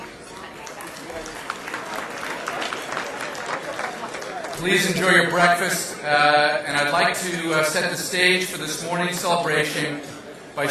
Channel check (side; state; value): both; identical; correlation 1.00